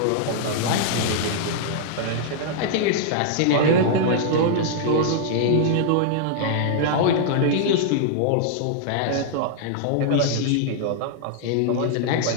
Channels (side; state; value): both; different; correlation -0.01